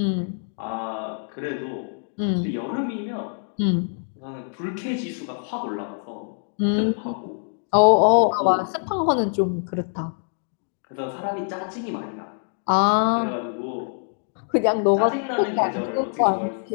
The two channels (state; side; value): silent; right; 59 dB below the other